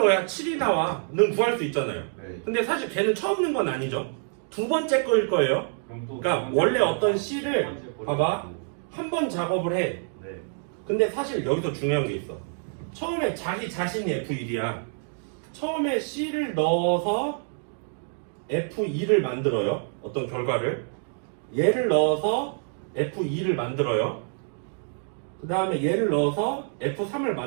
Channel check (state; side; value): silent; left; 58 dB below the other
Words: 7이 나와?는 구할 수 있잖아요. 네. 근데 사실 걔는 처음 넣은 건 아니죠. 두 번째 거일 거예요. 그럼 또 그러니까 두 번째 원래 거, 어떤 두 C를 번째 거를 봐봐. 넣고. 한 번 작업을 해. 네. 근데 사실 여기서 중요한 게 있어. 처음에 자기 자신이 F1이야. 처음에 C를 넣어서 F2를 만들어요. 어떤 결과를. 얘를 넣어서 F2를 만들어요. 그 다음에 얘를 넣어서 F3을